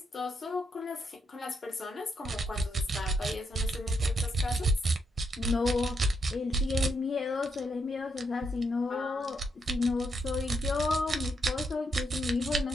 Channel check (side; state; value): both; normal; correlation 0.79